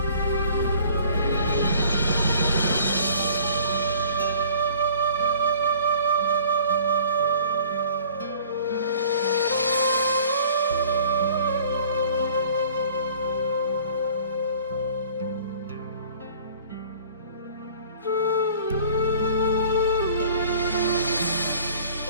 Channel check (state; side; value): inverted; both; correlation -0.51